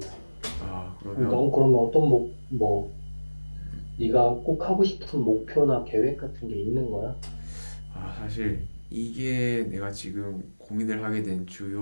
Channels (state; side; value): inverted; both; correlation -1.00